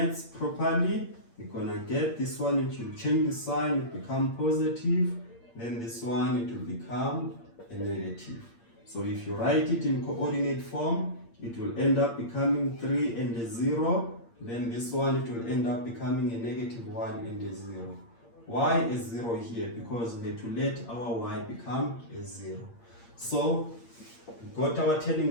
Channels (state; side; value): late; right; 8.7 ms